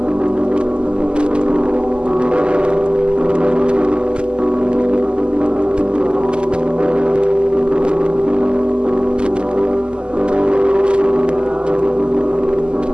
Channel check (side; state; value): left; late; 0.049 ms